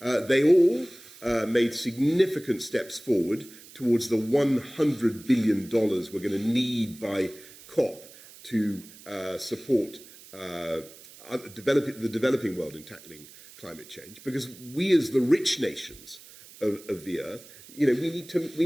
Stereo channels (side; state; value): right; noise; hiss, 20 dB below the sound